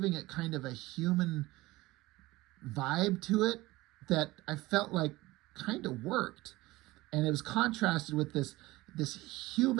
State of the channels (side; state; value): left; quieter; 19.5 dB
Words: it kind of a human vibe to it that I felt like kind of worked. And it was contrasted with this